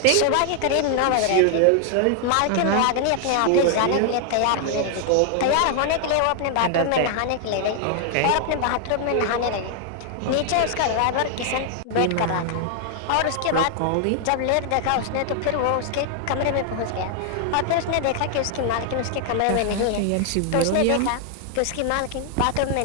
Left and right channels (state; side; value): different; both; correlation 0.00